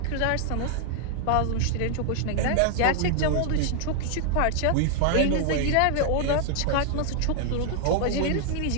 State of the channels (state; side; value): different; both; correlation 0.00